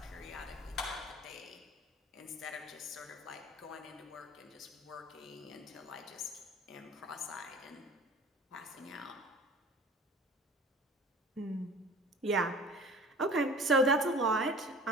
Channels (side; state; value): both; normal; correlation 0.43